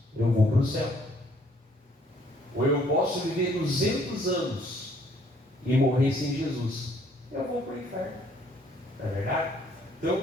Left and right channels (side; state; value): both; normal; correlation 0.63